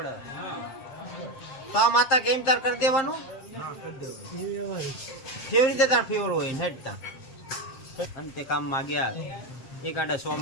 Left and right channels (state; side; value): late; right; 7.6 ms